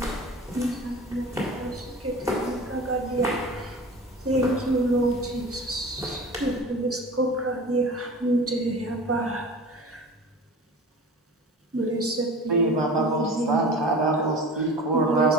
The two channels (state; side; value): normal; both; correlation 0.38